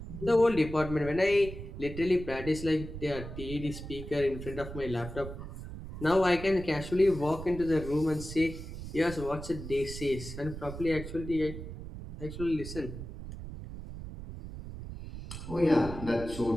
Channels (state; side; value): noise; right; rumble, 10 dB below the sound